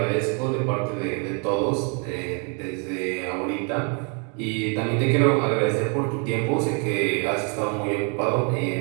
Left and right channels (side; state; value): left; quieter; 37.1 dB